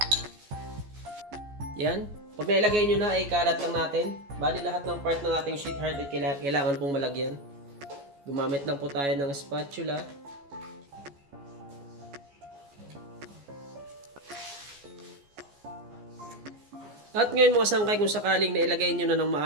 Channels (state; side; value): late; left; 14 ms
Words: Yan. Pag nailagay nyo na ay kalat lang natin. Bali lahat ng part ng ating sweetheart ay kailangan pong malagyan. Gumamit lang po tayo ng spatula. At ngayon mga sangkay, kung sakaling nailagay nyo na ng